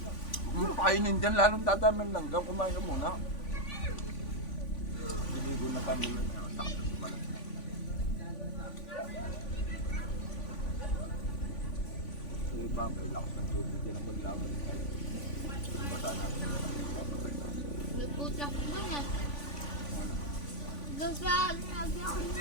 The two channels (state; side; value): late; right; 3.5 ms